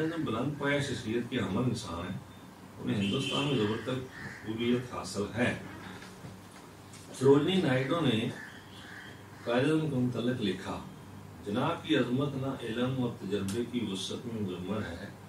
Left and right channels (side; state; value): both; identical; correlation 1.00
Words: اعظم بلند پایا شخصیت کے حامل انسان ہیں. انہیں ہندوستان میں زبر تک قبولیت حاصل ہے. سروجنی نائیڈو نے قائد اعظم کے متعلق لکھا جناب کی عظمت نہ علم اور تجربے کی وسعت میں مضمر ہے،